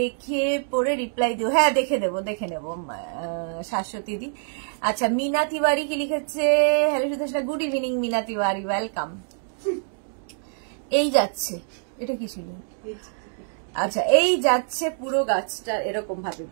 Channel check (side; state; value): left; silent; digital silence